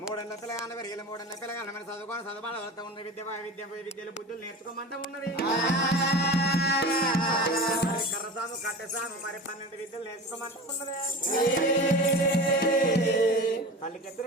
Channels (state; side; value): normal; both; correlation 0.33